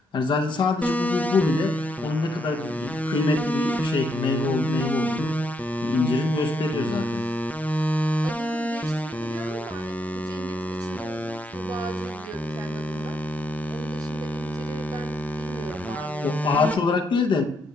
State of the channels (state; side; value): normal; both; correlation 0.77